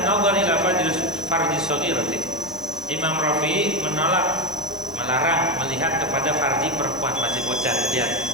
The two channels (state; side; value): normal; both; correlation 0.13